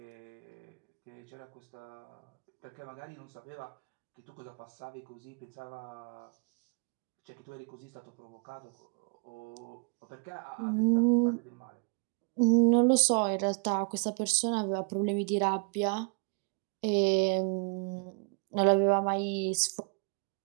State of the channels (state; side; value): quieter; left; 36.3 dB